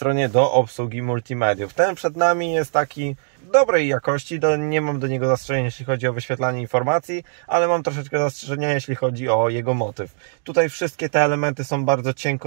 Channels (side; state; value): left; silent; digital silence